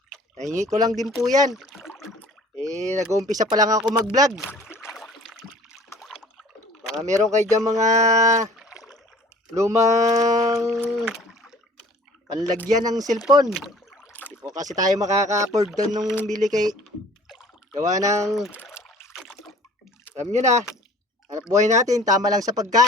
nahingi ko lang din po yan. Nag-uumpisa pa lang ako mag-vlog. Baka meron kayo dyan mga lumang panlagyan ng cellphone. Hindi po kasi tayo makaka-afford doon nung bili kay gawa ng, alam nyo na, hanap buhay natin, tama lang sa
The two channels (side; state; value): both; normal; correlation 0.49